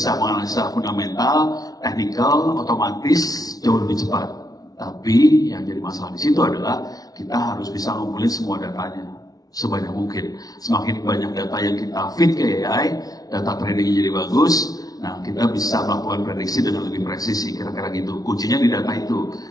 menganalisa fundamental, teknikal, otomatis jauh lebih cepat. Tapi yang jadi masalah di situ adalah kita harus bisa ngumpulin semua datanya sebanyak mungkin. Semakin banyak data yang kita feed ke AI, data tradingnya jadi bagus. Nah, kita bisa melakukan prediksi dengan lebih presisi, kira-kira gitu. Kuncinya di data itu.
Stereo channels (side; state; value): right; late; 0.18 ms